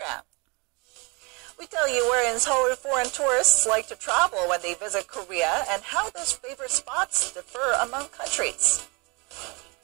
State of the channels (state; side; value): quieter; left; 29.2 dB